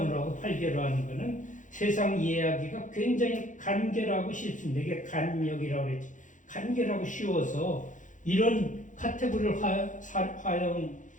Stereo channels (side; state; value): right; late; 0.37 ms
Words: 하고 8개로 하는 거는 세상 이해하기가 굉장히 간결하고 쉽습니다. 이게 간역이라고 그랬지. 간결하고 쉬워서 이런 카테고리를